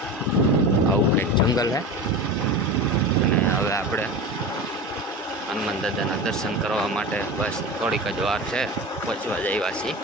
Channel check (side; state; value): both; normal; correlation 0.28